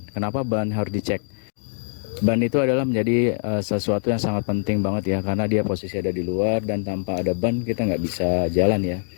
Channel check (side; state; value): right; silent; digital silence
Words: Kenapa ban harus dicek? Ban itu adalah menjadi sesuatu yang sangat penting banget ya, karena dia posisi ada di luar dan tanpa ada ban kita nggak bisa jalan ya.